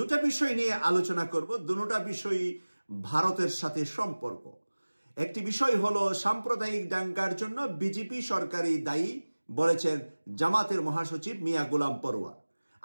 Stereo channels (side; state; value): both; inverted; correlation -1.00